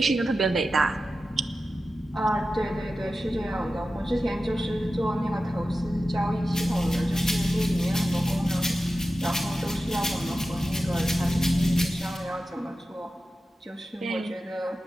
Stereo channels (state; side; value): normal; both; correlation 0.93